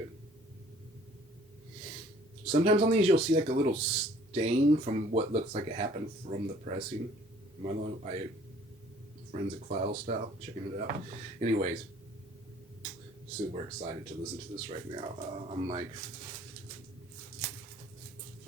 Sometimes on these you'll see like a little stain from what looks like it happened from the pressing. I forensic file style, checking it out. Anyways, super excited to listen to this right now. I'm like,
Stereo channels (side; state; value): both; normal; correlation 0.55